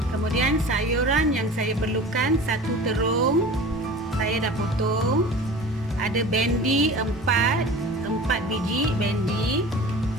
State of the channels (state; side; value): normal; both; correlation 0.39